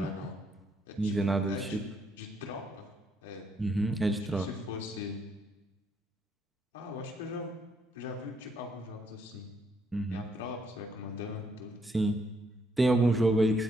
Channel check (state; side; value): normal; both; correlation 0.72